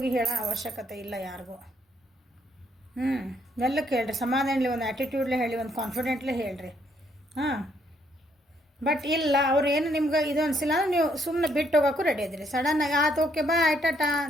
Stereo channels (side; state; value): both; normal; correlation 0.70